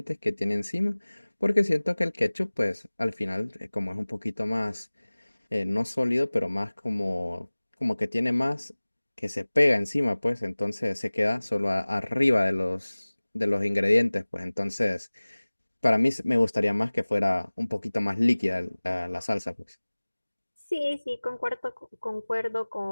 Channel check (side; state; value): both; inverted; correlation -1.00